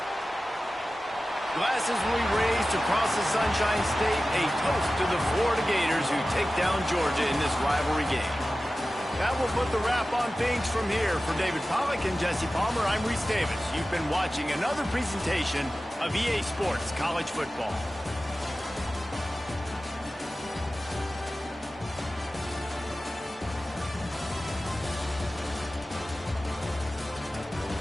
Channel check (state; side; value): normal; both; correlation 0.95